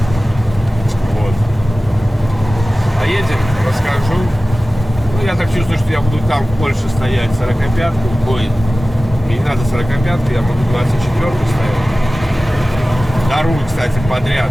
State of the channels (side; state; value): both; normal; correlation 0.97